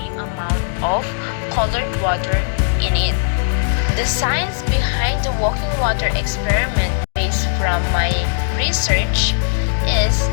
amount of colored water in it. The science behind the walking water experiment, based from my research, is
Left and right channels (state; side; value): silent; right; digital silence